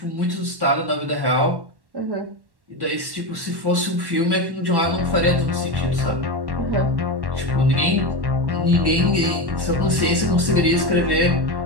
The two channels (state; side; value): late; left; 1.1 ms